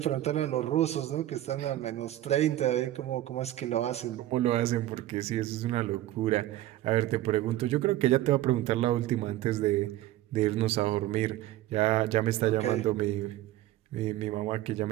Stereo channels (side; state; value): left; quieter; 14.5 dB